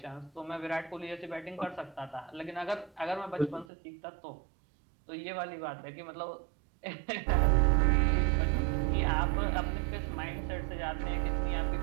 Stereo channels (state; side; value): drops out; left; at 3.7 s